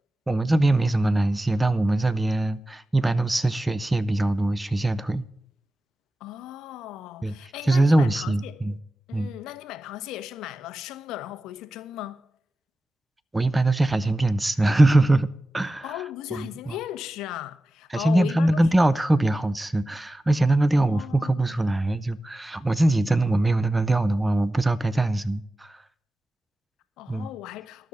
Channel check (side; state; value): both; normal; correlation 0.94